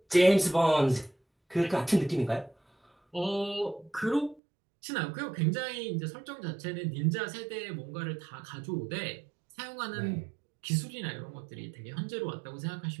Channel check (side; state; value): left; drops out; at 4.4 s